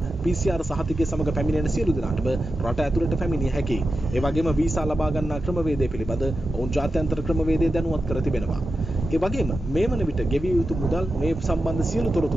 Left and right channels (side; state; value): both; normal; correlation 0.91